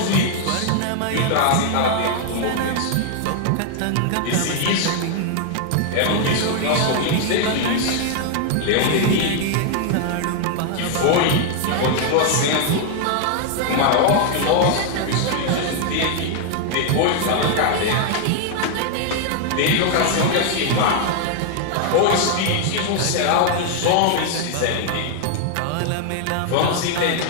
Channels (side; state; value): both; different; correlation 0.00